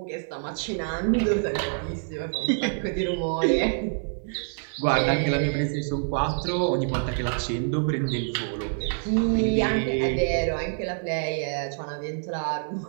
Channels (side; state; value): left; silent; 61 dB below the other